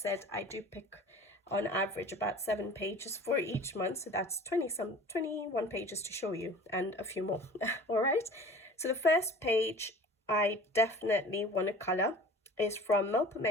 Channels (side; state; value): both; normal; correlation 0.43